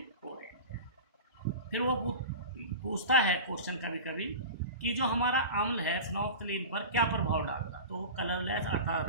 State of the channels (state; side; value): inverted; both; correlation -0.31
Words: ऑरेंज है। फिर वो पूछता है क्वेश्चन कभी कभी कि जो हमारा अम्ल है फिनोफ्थलीन पर क्या प्रभाव डालता, तो वो कलरलेस अर्थात